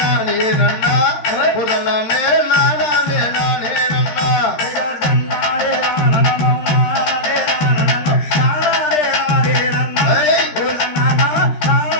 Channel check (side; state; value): right; late; 13 ms